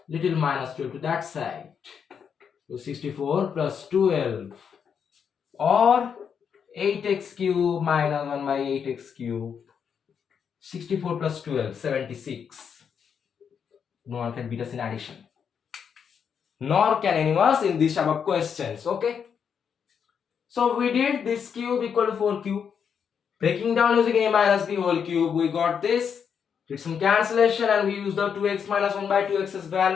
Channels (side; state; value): right; quieter; 7.2 dB